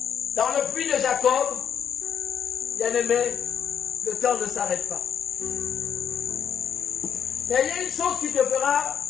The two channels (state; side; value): quieter; right; 8.3 dB